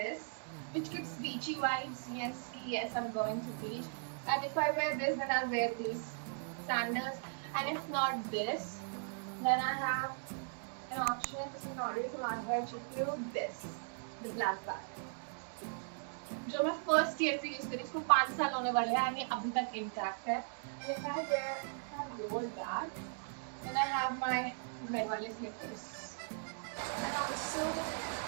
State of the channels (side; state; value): left; silent; digital silence